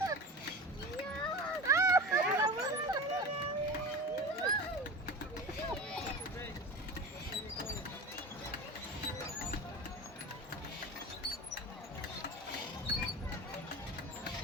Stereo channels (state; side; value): normal; both; correlation 0.31